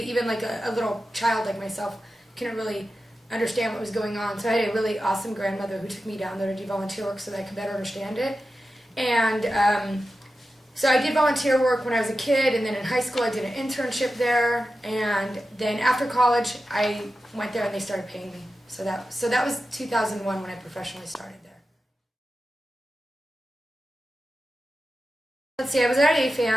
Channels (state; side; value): normal; both; correlation 0.92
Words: even like a little child like myself couldn't really understand what was going on. So I had a really awesome grandmother who took me down there to do volunteer work so that I could better understand it. And so I did volunteer work when I was a kid, and then in high school I did an internship there, and then after college I went there and they started paying me. So that was 2001 when I professionally started there. Let's see, I was at